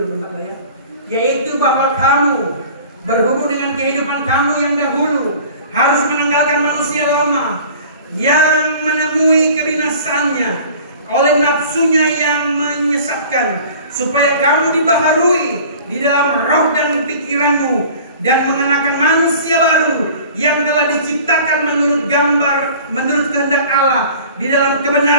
lah ya. Yaitu bahwa kamu berhubung dengan kehidupan kamu yang dahulu harus menanggalkan manusia lama yang menemui kebinasannya oleh nafsunya yang menyesatkan, supaya kamu dibaharui di dalam roh dan pikiranmu dan mengenakan manusia baru yang telah diciptakan menurut kehendak Allah di dalam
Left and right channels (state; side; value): inverted; both; correlation -0.45